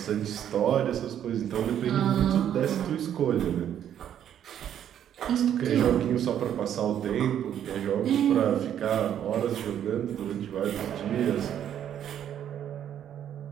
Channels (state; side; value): quieter; left; 10.0 dB